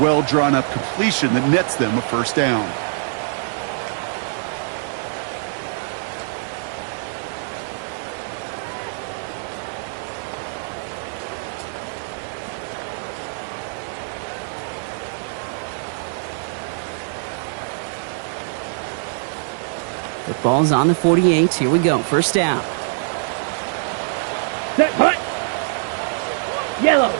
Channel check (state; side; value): silent; left; digital silence